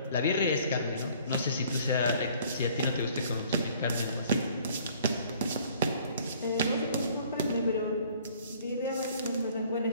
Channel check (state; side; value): inverted; both; correlation -0.56